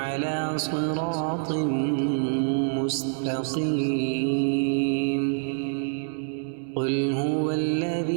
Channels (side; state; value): left; silent; 61 dB below the other